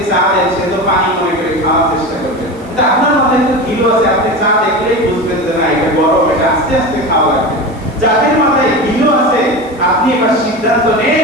চা দেন সে তো পানি মনে করে খাওয়ার চেষ্টা করবে। কিন্তু আপনার মাথায় তো গিলো আছে, আপনি চা দেখলেই বুঝবেন যে না এটা গরম, এটা আস্তে আস্তে খাওয়া লাগবে। যাদের মাথায় গিলো আছে আপনি এবার সিদ্ধান্ত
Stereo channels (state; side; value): noise; right; hiss, 27 dB below the sound